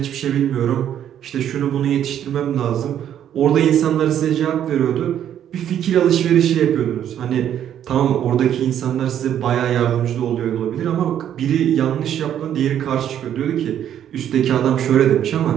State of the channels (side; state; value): left; quieter; 10.2 dB